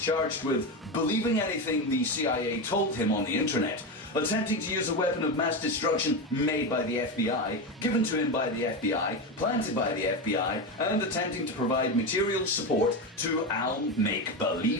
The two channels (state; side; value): normal; both; correlation 0.16